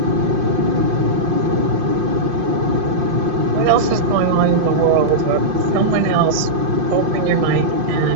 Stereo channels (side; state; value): left; late; 5.7 ms